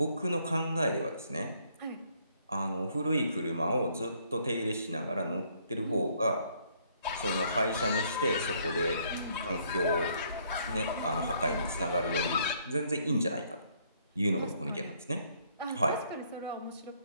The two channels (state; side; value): inverted; both; correlation -0.67